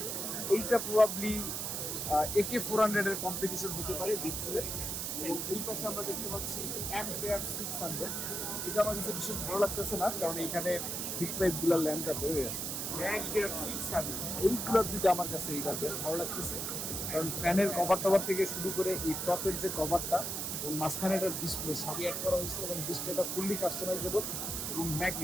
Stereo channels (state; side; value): noise; right; hiss, 2 dB below the sound